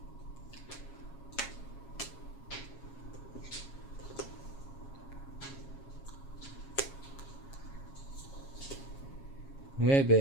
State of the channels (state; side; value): late; right; 7.3 ms